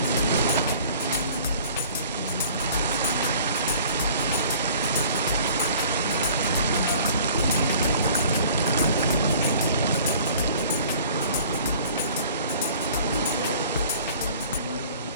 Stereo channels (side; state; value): both; inverted; correlation -0.50